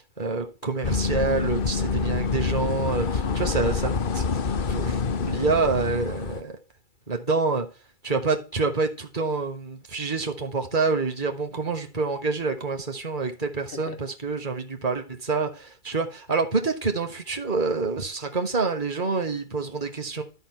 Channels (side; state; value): right; late; 2.3 ms